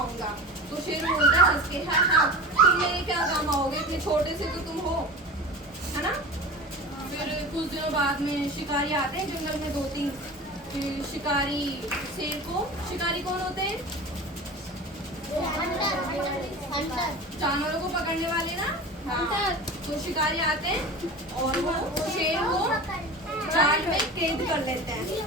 तो शेर बोलता है हंस के, हाँ तुम मेरे क्या काम आओगे, इतने छोटे से तो तुम हो, है ना? फिर कुछ दिनों बाद में शिकारी आते हैं जंगल में 2-3। फिर शिकारी शेर को, शिकारी कौन होते हैं? जानवरों को पकड़ने वाले ना। हाँ, तो शिकारी आते हैं और वो शेर को जाल में कैद कर लेते हैं,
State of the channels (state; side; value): normal; both; correlation 0.33